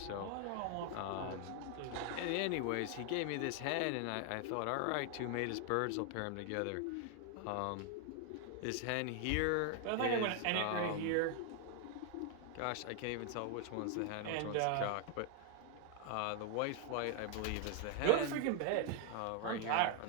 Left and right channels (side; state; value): both; different; correlation 0.00